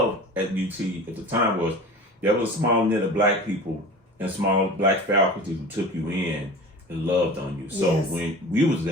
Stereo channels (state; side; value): normal; both; correlation 0.36